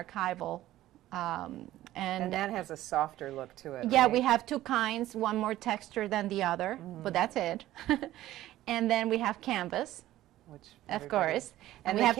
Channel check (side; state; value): left; quieter; 14.6 dB